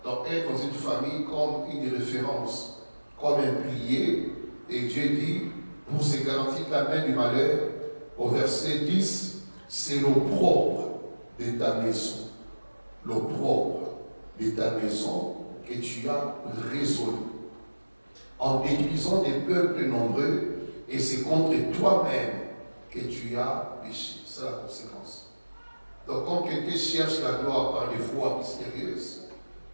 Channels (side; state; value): both; inverted; correlation -1.00